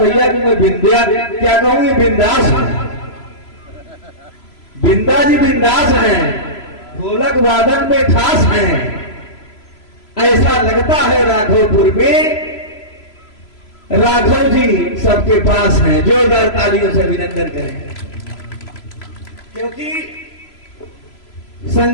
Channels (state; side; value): late; right; 3.0 ms